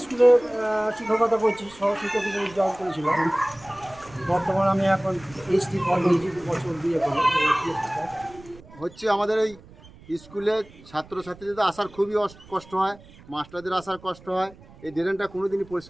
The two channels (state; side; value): noise; right; rumble, 22 dB below the sound